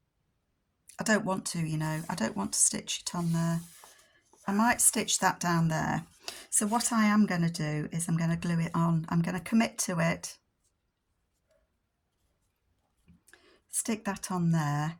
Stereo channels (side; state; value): both; identical; correlation 1.00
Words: I don't want to, you know, I don't want to stitch it on there. I might stitch that down there. So what I am going to do is I'm going to glue it on. I'm going to commit to it. Stick that on there.